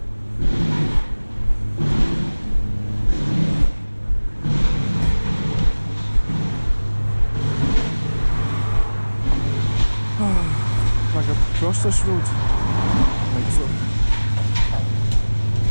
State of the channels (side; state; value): both; inverted; correlation -1.00